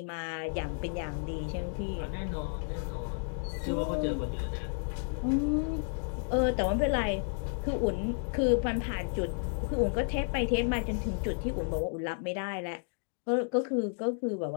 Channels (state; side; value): silent; right; 56 dB below the other